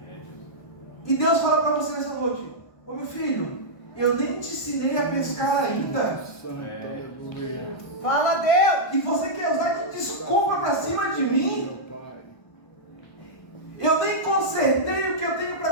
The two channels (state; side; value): late; right; 1.2 ms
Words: E Deus fala para você nessa noite: ô meu filho, eu nem te ensinei a pescar ainda. Santo, aleluia. Fala, Deus. E você quer usar de desculpa para cima de mim? Meu Pai. Eu nem consertei o que eu tenho